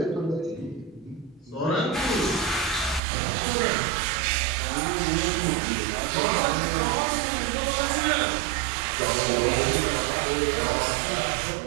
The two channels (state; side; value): drops out; left; at 3.0 s